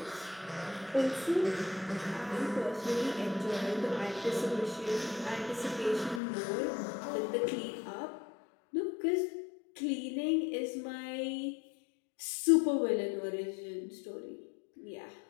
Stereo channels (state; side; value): drops out; right; at 6.2 s